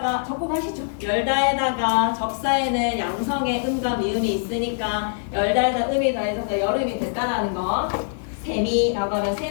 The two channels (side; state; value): right; silent; digital silence